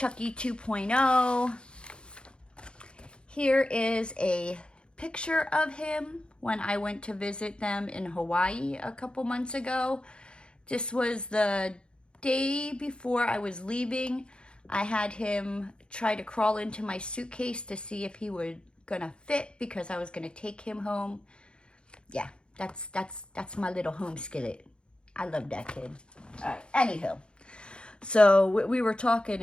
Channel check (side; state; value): right; late; 0.054 ms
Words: 2.0. Here is a picture of him when I went to visit them in Hawaii a couple months ago. This was the day before I was leaving. I had him try to crawl into my suitcase to see if he was gonna fit because I was gonna take him home. Yeah, that's my little home skillet. I love that kid. All right, anywho. So we were talking